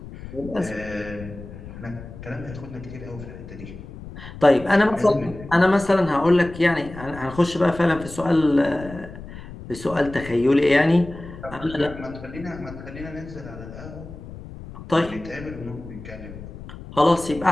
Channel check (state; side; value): noise; left; rumble, 14 dB below the sound